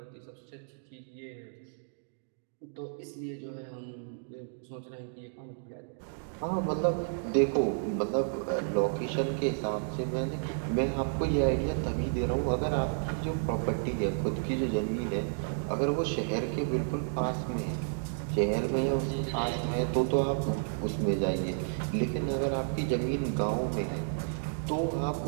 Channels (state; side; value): silent; left; digital silence